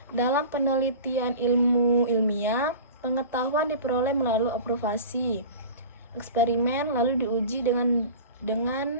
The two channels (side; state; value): both; inverted; correlation -0.36